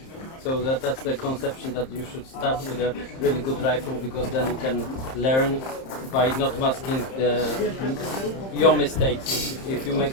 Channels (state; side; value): late; right; 30 ms